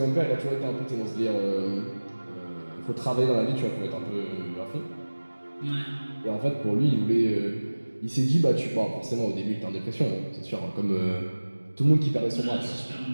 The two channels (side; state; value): both; inverted; correlation -1.00